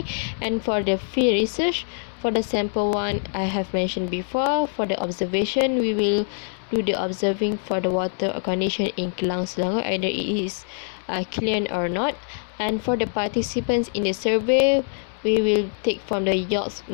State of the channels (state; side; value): silent; right; 63 dB below the other